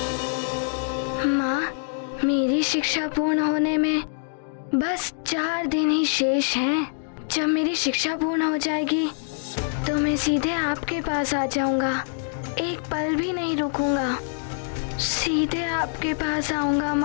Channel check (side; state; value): right; silent; digital silence